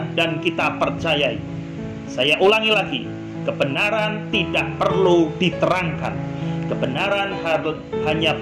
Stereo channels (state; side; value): identical; both; correlation 1.00